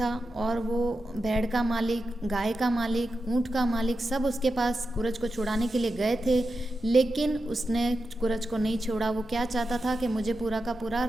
और वो भेड़ का मालिक, गाय का मालिक, ऊँट का मालिक सब उसके पास कुरज को छुड़ाने के लिए गए थे, लेकिन उसने कुरज को नहीं छोड़ा। वो क्या चाहता था कि मुझे पूरा का पूरा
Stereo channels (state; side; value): normal; both; correlation 0.90